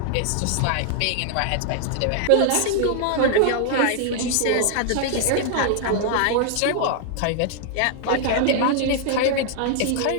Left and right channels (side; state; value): both; different; correlation 0.00